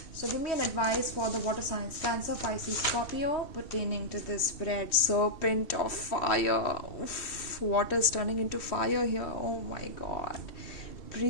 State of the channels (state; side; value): late; right; 2.7 ms